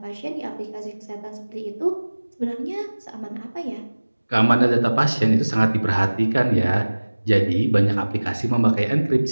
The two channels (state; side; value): inverted; both; correlation -1.00